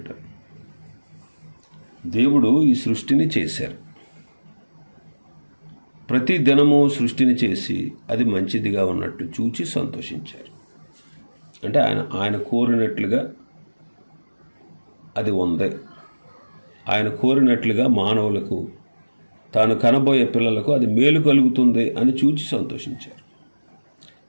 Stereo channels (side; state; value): both; inverted; correlation -1.00